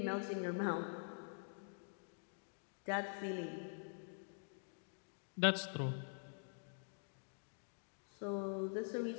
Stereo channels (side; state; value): right; silent; digital silence